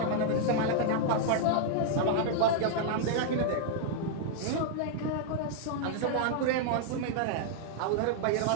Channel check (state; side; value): different; both; correlation -0.01